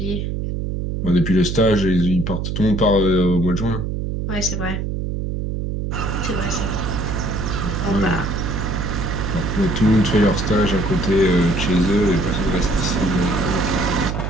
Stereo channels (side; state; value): right; noise; hum, 3 dB below the sound